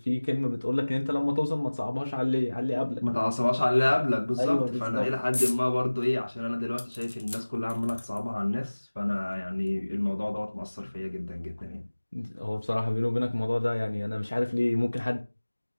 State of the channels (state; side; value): inverted; both; correlation -1.00